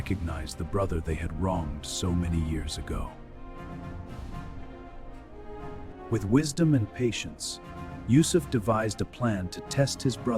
the brother they had wronged so many years ago. With wisdom and patience, Yusuf devised a plan to test his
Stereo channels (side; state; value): both; identical; correlation 1.00